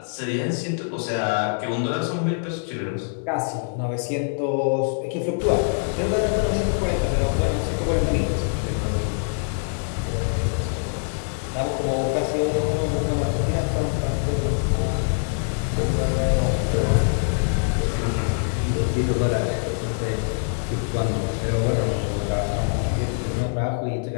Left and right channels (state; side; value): silent; right; 63 dB below the other